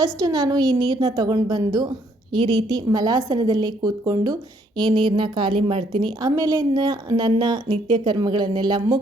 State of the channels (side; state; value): both; normal; correlation 0.68